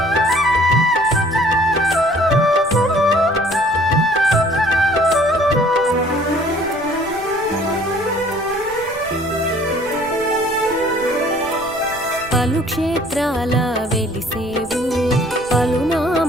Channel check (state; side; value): noise; right; rumble, 20 dB below the sound